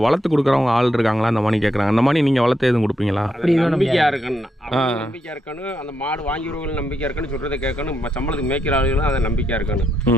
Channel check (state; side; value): normal; both; correlation 0.80